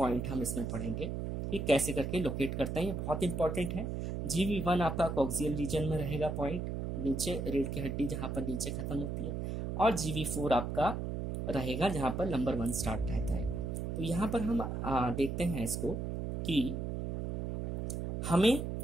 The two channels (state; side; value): noise; right; hum, 3 dB below the sound